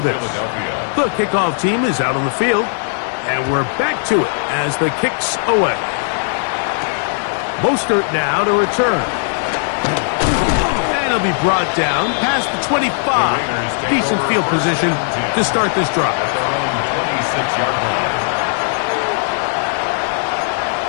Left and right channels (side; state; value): right; silent; digital silence